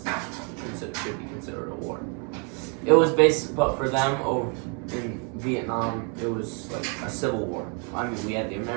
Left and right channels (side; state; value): left; quieter; 37.1 dB